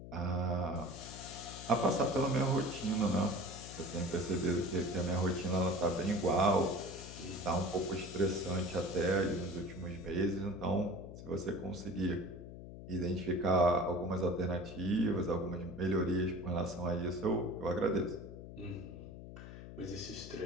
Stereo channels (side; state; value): left; noise; hum, 12 dB below the sound